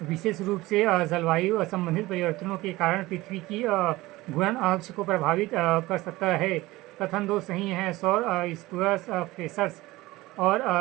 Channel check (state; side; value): quieter; left; 19.2 dB